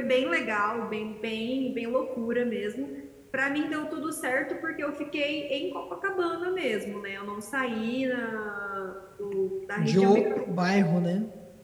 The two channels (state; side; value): identical; both; correlation 1.00